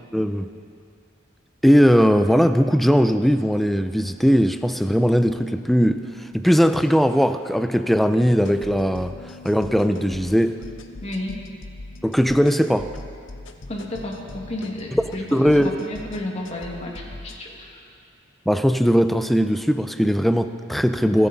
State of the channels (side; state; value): both; normal; correlation 0.96